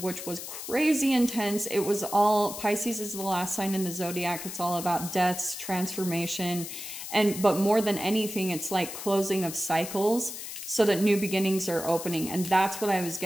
which was crazy intense. It was all, Pisces is the last sign in the zodiac. It's all about deaths, transformation, but more than anything, it's like closing of cycles so that new beginnings are opening. And that's what I was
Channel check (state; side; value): noise; left; hiss, 9 dB below the sound